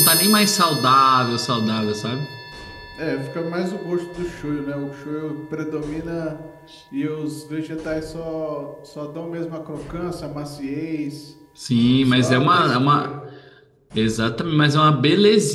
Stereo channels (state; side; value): identical; both; correlation 1.00